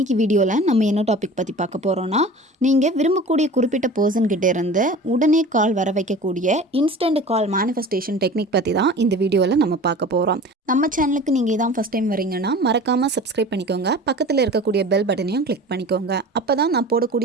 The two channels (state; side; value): normal; both; correlation 0.39